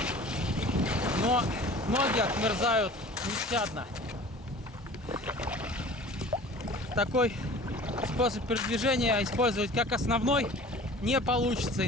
Но ноги отмерзают нещадно. Такой способ передвижения использовать как основной не получится,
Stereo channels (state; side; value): normal; both; correlation 0.44